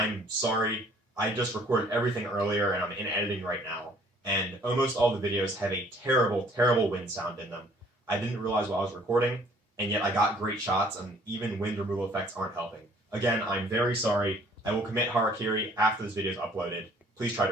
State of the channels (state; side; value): normal; both; correlation 0.58